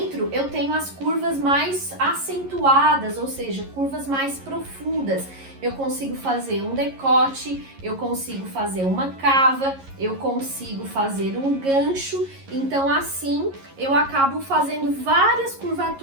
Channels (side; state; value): left; late; 11 ms